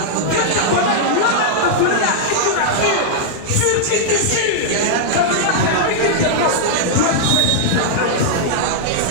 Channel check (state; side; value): different; both; correlation -0.01